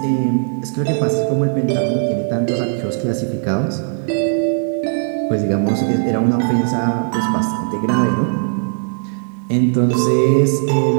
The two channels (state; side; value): silent; left; digital silence